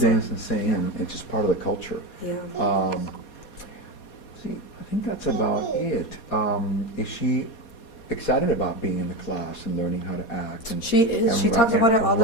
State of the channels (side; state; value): right; late; 4.2 ms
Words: dance and sing, and it's just part of the culture. Yeah. See, I think that's about it. Is she excited about being in the class and learning how to act? And She is. She ri- talks about it all the